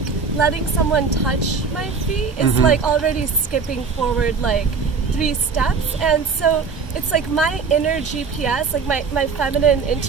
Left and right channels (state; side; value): quieter; left; 5.2 dB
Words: letting someone touch my feet is like already skipping forward like 3 steps. And so it's like my inner GPS, like my feminine